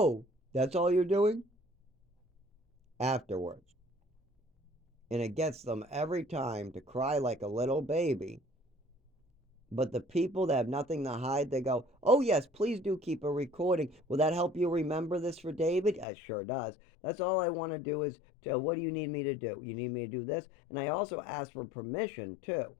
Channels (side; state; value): right; drops out; at 16.1 s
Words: that's all you're doing? Afterwards. And it gets them every time to cry like a little baby. But the people that have nothing to hide, they go, oh, yes, please do keep a recording. Will that help you remember this for David? It sure does. That's all I want to do is, what do you need me to do? You need me to do this? And I also ask for permission, too.